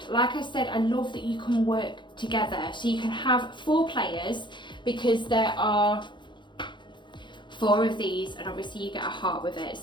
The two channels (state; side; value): late; right; 0.23 ms